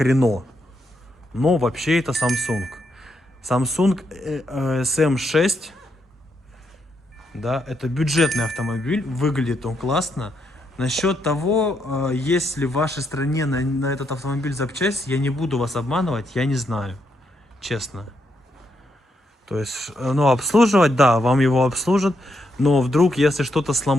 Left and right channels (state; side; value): normal; both; correlation 0.79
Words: Renault. Но вообще это Samsung. Samsung SM6, да, это бюджетный автомобиль, выглядит он классно. Насчет того, есть ли в вашей стране на этот автомобиль запчасть, я не буду вас обманывать, я не знаю, честно. То есть, ну, обслуживать, да, вам его обслужат, но вдруг, если что-то